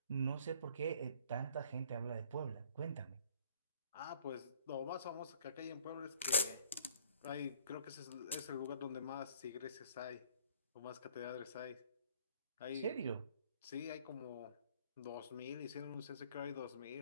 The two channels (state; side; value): inverted; both; correlation -0.58